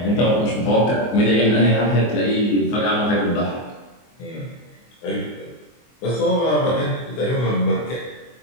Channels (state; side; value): late; right; 24 ms